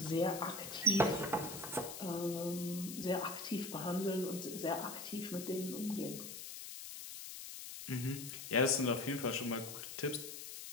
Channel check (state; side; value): noise; left; hiss, 9 dB below the sound